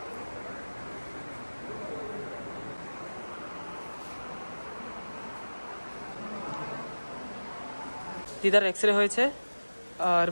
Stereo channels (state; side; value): inverted; both; correlation -1.00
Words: দিদার এক্সরে হয়েছে আর